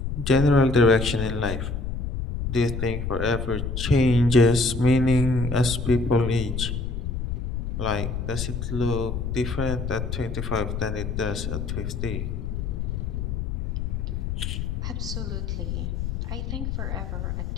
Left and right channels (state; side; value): noise; left; rumble, 3 dB below the sound